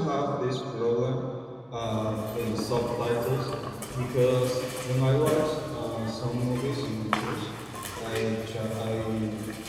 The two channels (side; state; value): both; identical; correlation 1.00